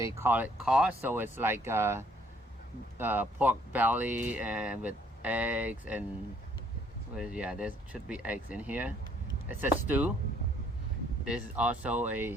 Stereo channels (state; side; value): normal; both; correlation 0.63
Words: call it caw, so it's like pork belly and with eggs and yeah, there should be eggs in here. It's a stew. This is also